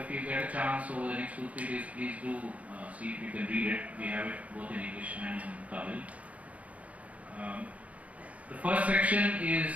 you get a chance over the next 2-3 days, please do see if you can read it. We have it both in English and in Tamil. The first section is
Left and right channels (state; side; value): late; left; 0.067 ms